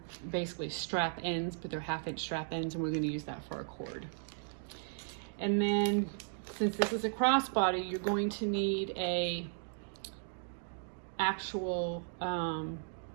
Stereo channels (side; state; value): left; silent; digital silence